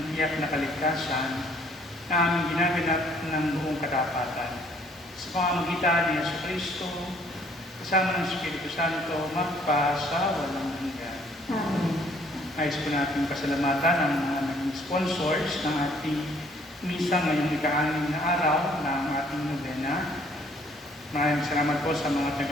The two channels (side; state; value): both; normal; correlation 0.61